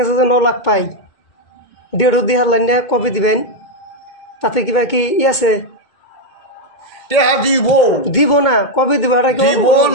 যে 9 লাখ পাই 1.5 দিহার লাইনে কবে দিবেন তাতে কিবা কি আছে টেহা দিব না কবে দিব এটা কি দিব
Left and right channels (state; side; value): late; right; 2.1 ms